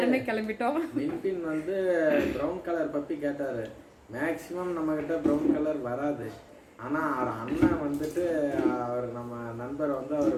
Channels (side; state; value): both; identical; correlation 1.00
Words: கிளம்பிட்டோம். வின்பின் வந்து ப்ரௌன் கலர் பப்பி கேட்டார். மேக்ஸிமம் நம்மக்கிட்ட ப்ரௌன் கலர் வராது. ஆனால் அவர் அண்ணன் வந்துட்டு அவர் நம்ம நண்பர் வந்து அவர்